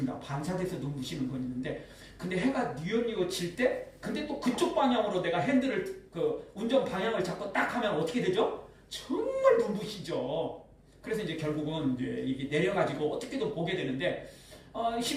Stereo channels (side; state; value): both; identical; correlation 1.00